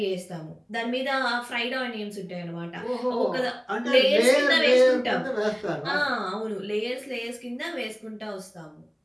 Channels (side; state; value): both; identical; correlation 1.00